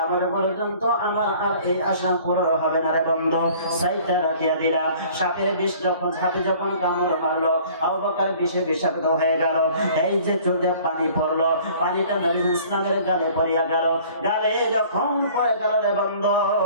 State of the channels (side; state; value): both; inverted; correlation -0.51